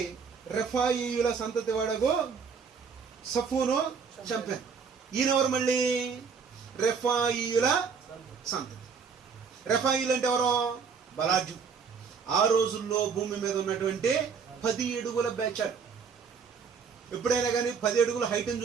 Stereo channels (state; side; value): quieter; left; 5.9 dB